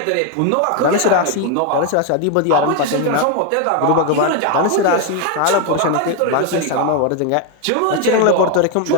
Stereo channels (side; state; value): both; different; correlation 0.01